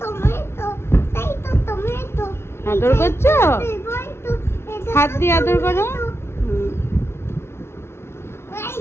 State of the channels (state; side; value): late; right; 0.12 ms